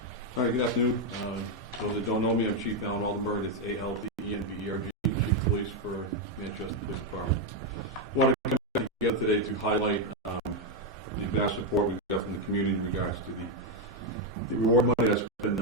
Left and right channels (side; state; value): both; normal; correlation 0.03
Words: All right, good afternoon. Those that don't know me, I'm Chief Alan Aldenberg. It's A-L-D-E-N-B-E-R-G, Chief of Police for Manchester Police Department. I want to come together today to highlight the vast support we've got from the community in regards to the reward money that's been